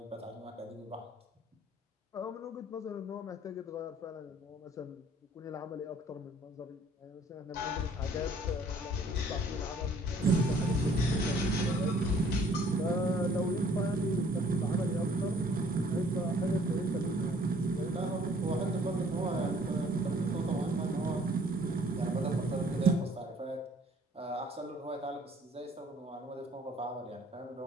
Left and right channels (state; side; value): normal; both; correlation 0.58